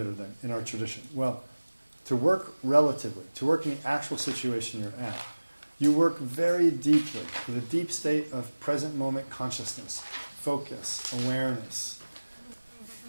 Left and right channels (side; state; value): both; inverted; correlation -1.00